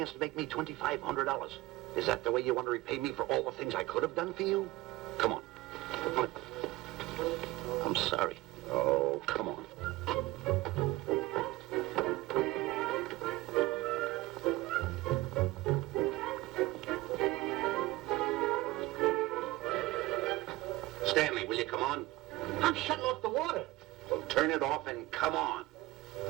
to make me $2,500. Is that the way you want to repay me for all the things I could have done for you? Come on. Come on. I'm sorry. Oh, come on. Stanley, will you come on? I'm shutting off the water. Well, turn it off and come on.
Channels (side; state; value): left; quieter; 18.8 dB